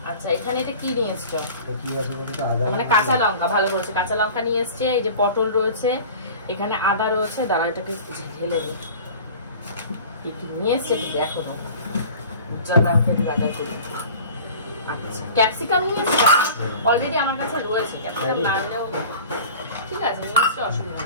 আচ্ছা এখানে এটা কি নিয়ে এসছো? মানে কাঁচা লঙ্কা, ভালো বলছে, কাঁচা লঙ্কা নিয়ে এসছে। এই যে পটল রয়েছে, এখানে আদা রয়েছে, দাঁড়া এটাকে ঢেলে দিই। নিয়ে এসছে দেখো, আচ্ছা ক্যাপসিকাম নিয়ে এসছে, অলরেডি আমার কাছে রয়েছে। ক্যাপসিকাম না আনলেও ঠিক আছে, নিয়ে এসছে, অসুবিধা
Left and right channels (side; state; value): both; inverted; correlation -0.41